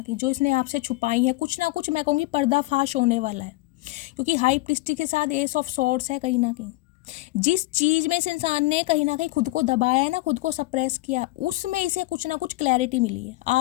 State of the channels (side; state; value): right; quieter; 20.4 dB